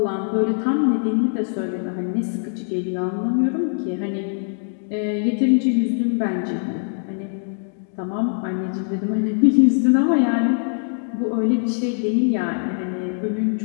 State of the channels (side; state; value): right; silent; digital silence